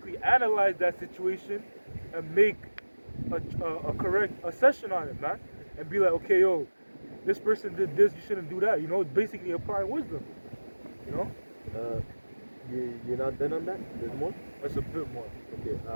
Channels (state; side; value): inverted; both; correlation -1.00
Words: analyze that situation and make a correct assessment on it, man. And be like, okay, yo, this person did this, you shouldn't do that. It's basically applying wisdom, You're not done on that? There's more? That's a bit more. Okay.